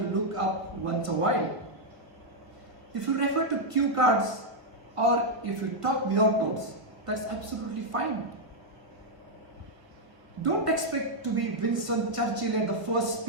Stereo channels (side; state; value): left; late; 1.5 ms